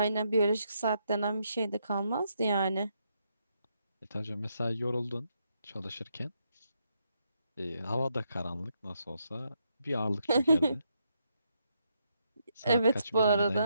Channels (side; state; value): both; inverted; correlation -0.78